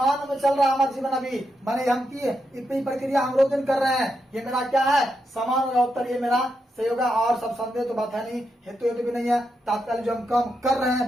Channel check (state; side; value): normal; both; correlation 0.84